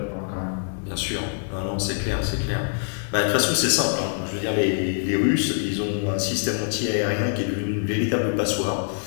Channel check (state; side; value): silent; right; 62 dB below the other